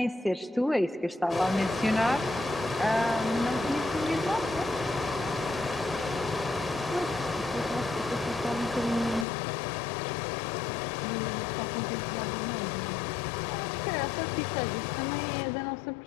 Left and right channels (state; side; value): drops out; right; at 9.2 s